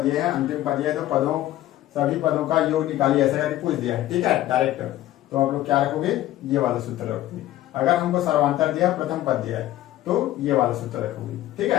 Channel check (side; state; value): right; quieter; 14.5 dB